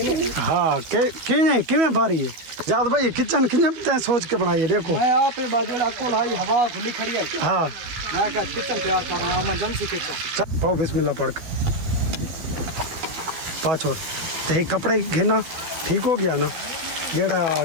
हाँ किमें बारी है जाद भाई किचन किचन सोच के बनाई है। देखो मैं आप बाजू आपको लाई हवा खुली खड़ी है। हाँ मैं क्या किचन तैयार कर रहा हूँ इमरजेंसी किचन। पाओ बिस्मिल्लाह पढ़ के पा छोड़ ते कपड़े घेना ठीक हो गया ना। जेड़ा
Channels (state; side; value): late; left; 12 ms